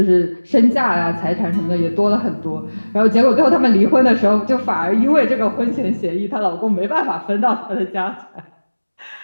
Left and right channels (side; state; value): both; inverted; correlation -1.00